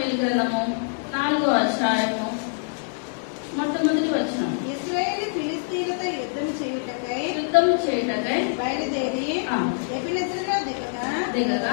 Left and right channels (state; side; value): silent; right; digital silence